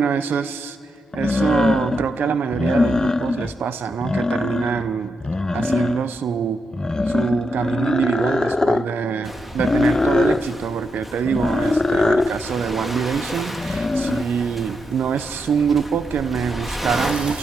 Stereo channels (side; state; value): both; normal; correlation 0.83